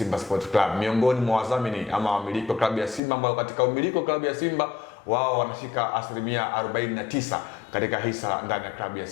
Sport Club, miongoni mwa wadhamini ama wamiliki wa klabu ya Simba, ambao katika umiliki wa klabu ya Simba wao wanashika asilimia 49 katika hisa ndani ya klabu ya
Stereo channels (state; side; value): drops out; right; at 3.0 s